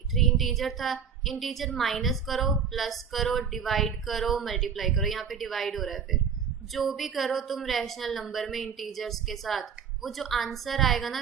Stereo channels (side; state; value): left; quieter; 7.0 dB